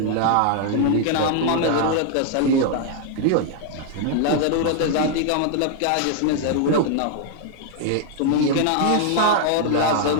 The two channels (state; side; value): different; both; correlation 0.00